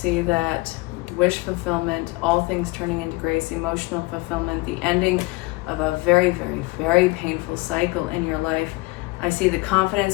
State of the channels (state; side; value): quieter; right; 23.1 dB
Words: that wish fulfillment, all things turning into grace, emotional fulfillment, the ending of a very, very, very painful cycle in your life. I see the